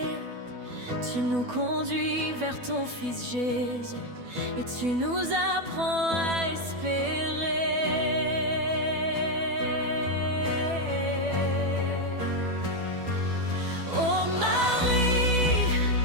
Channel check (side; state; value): left; late; 12 ms